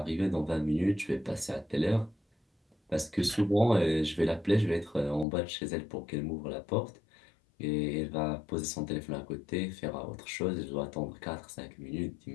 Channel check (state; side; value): drops out; right; at 5.2 s